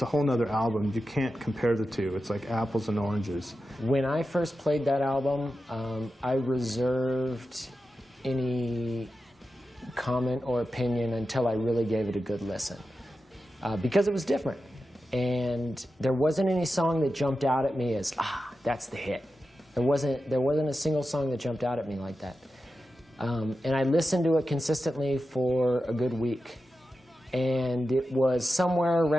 whole nother album. You can't compare the two. It's like apples and oranges. When I first played that album, I reserved any comment or opinion until I really gave it a good listen, because it was different. And there wasn't any song that jumped out at me as, that's the hit. There wasn't a single song that jumped out at me like that. And I listened to it consistently for a good week. And it was somewhere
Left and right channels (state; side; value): normal; both; correlation 0.91